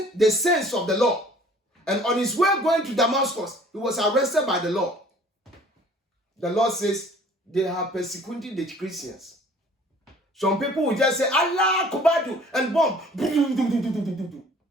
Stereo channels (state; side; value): normal; both; correlation 0.52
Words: the sense of the law. And on his way going to Damascus, he was arrested by the Lord. The Lord says they have persecuted the Christians. Some people will just say, Allah Kubadu, and bomb.